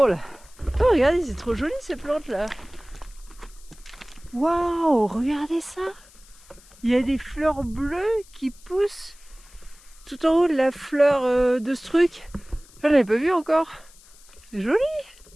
Oh, regardez, c'est trop joli ces plantes là. Waouh, regardez ça. Il y a des fleurs bleues qui poussent tout en haut de la fleur de ce truc. Je l'avais pas vu encore. C'est joli.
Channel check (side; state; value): left; noise; hiss, 25 dB below the sound